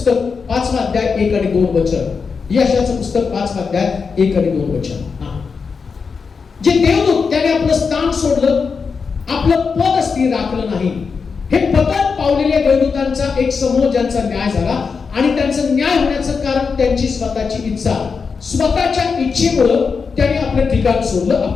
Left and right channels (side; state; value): right; quieter; 5.3 dB